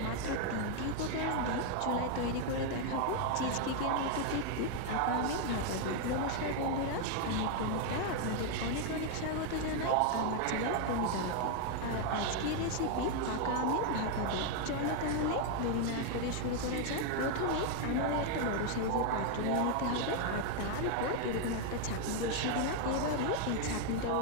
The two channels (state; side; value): different; both; correlation 0.00